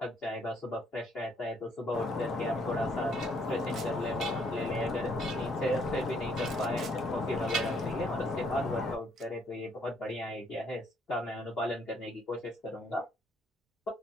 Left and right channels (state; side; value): normal; both; correlation 0.68